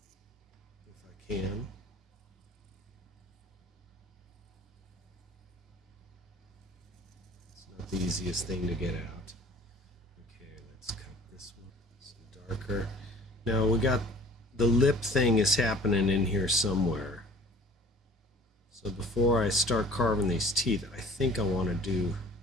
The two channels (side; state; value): both; normal; correlation 0.49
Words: if I can. It's not the easiest thing to get out. Okay, let's cut this one some darker. Now we got the lip thing is happening in here somewhere. So before I start carving these teeth, I think I want to do